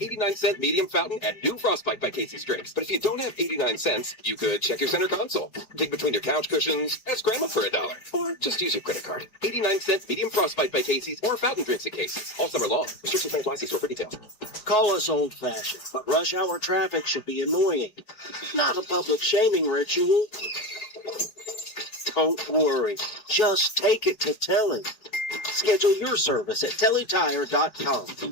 medium fountain and new Frostbite by Casey's drinks. But if you don't have 89 cents, you could check your center console, dig between your couch cushions, ask Grandma for $1, or just use your credit card. 89-cent medium Frostbite by Casey's or fountain drinks at Casey's all summer long. Restrictions apply. See store for details. Call us old-fashioned, but rush hour traffic should be annoying. Not a public shaming ritual. Don't worry. Just take it to Telly. Schedule your service at tellytire.com.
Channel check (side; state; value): right; late; 4.7 ms